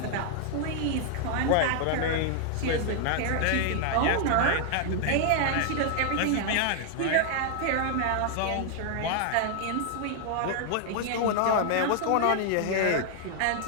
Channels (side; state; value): both; different; correlation 0.00